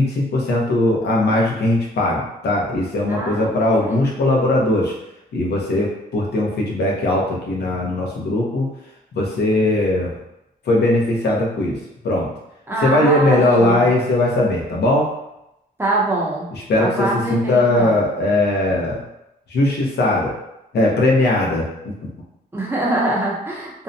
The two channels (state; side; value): normal; both; correlation 0.55